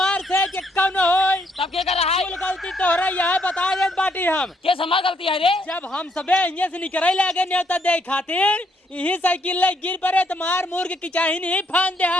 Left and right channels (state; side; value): normal; both; correlation 0.72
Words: से कि कौन होई तब के कर रहा है गलती तोहरा यह बता दे बाटी हम के हमार गलती है रे जब हम सबे यहाँ से निकले लगे न्योता दे खातिर यही साइकिल ले गिर पड़े तो मार मुर के किचाही नहीं फान दे